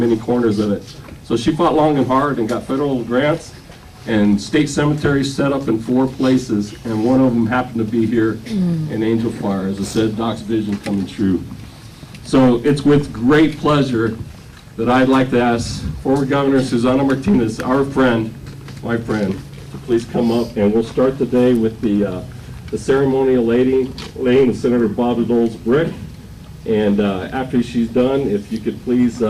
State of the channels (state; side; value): identical; both; correlation 1.00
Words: corners of it. So she fought long and hard and got federal grants and state cemeteries set up in 4 places, and one of them happened to be here in Angel Fire. As I said, Doc's vision coming true. So it's with great pleasure that I'd like to ask former Governor Susana Martinez, our friend, my friend, to please come up, and we'll start the day with the ceremonial laying of Senator Bob Dole's brick. And after she's done, if you could please